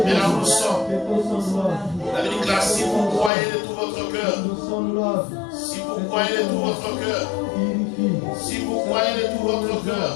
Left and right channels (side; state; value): right; drops out; at 3.3 s